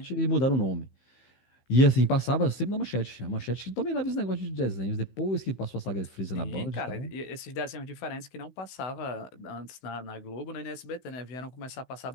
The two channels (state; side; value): late; right; 15 ms